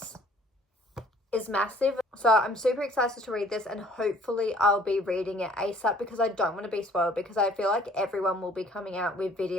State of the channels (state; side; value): normal; both; correlation 0.56